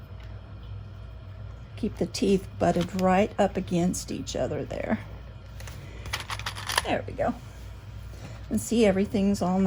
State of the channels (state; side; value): identical; both; correlation 1.00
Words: Keep the teeth butted right up against each other there. There we go. And see, everything's all